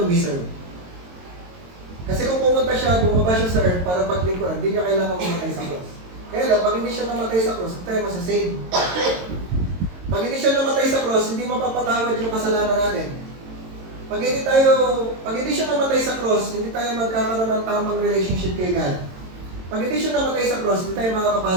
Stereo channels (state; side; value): late; left; 22 ms